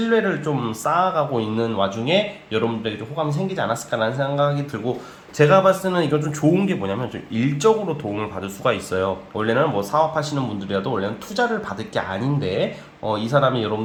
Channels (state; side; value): identical; both; correlation 1.00